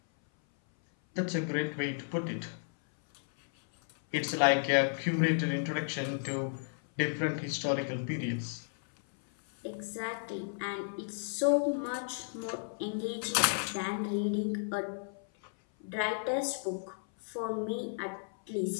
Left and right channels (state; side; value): silent; right; 56 dB below the other